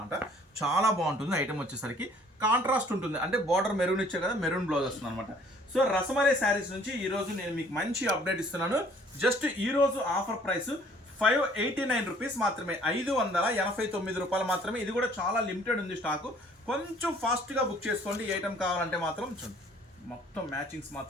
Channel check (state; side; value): normal; both; correlation 0.57